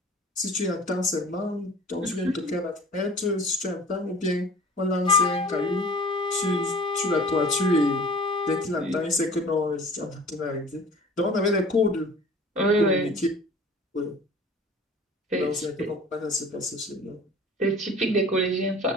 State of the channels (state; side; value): normal; both; correlation 0.45